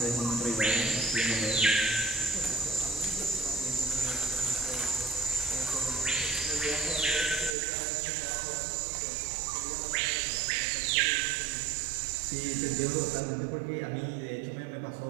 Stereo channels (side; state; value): left; drops out; at 7.6 s